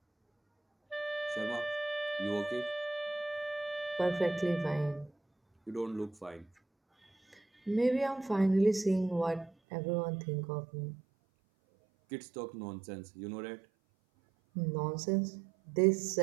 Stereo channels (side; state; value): left; drops out; at 9.5 s